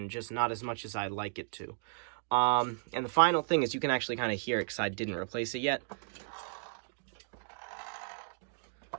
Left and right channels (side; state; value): left; silent; digital silence